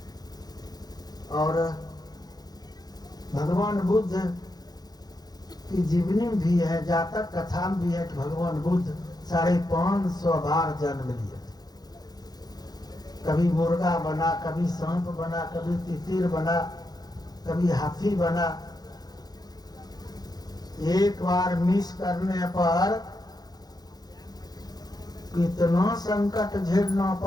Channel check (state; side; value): late; right; 0.19 ms